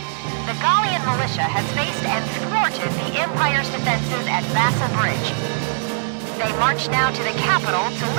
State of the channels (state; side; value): silent; left; 56 dB below the other